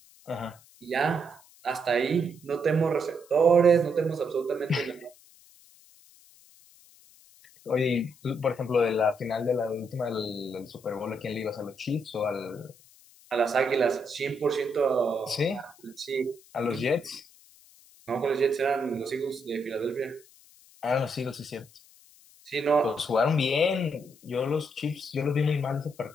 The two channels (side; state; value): left; noise; hiss, 26 dB below the sound